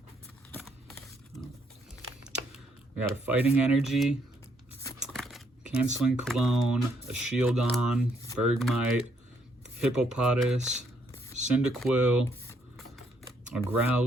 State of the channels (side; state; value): both; normal; correlation 0.71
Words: We got a Fighting Energy, Canceling Cologne, a Shieldon, Bergmite, Hippopotas, Cyndaquil, a